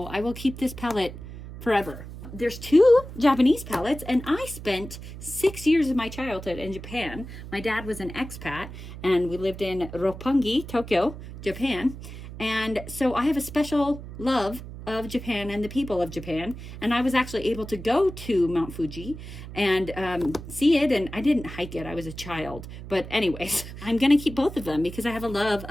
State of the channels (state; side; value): noise; right; hum, 12 dB below the sound